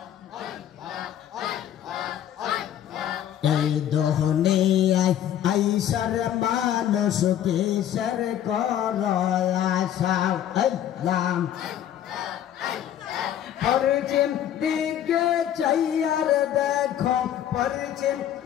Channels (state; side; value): quieter; right; 10.7 dB